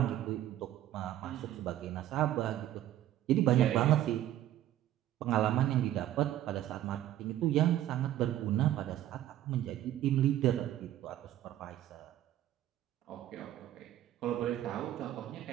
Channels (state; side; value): quieter; left; 12.7 dB